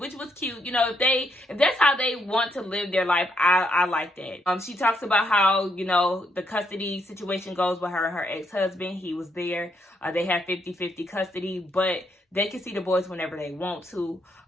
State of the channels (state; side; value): normal; both; correlation 0.75